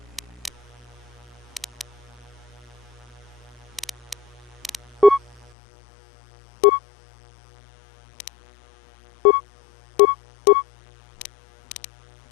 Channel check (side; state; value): right; drops out; at 5.5 s